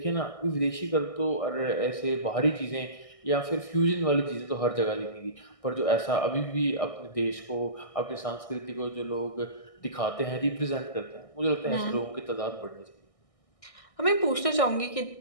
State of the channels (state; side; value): late; right; 1.6 ms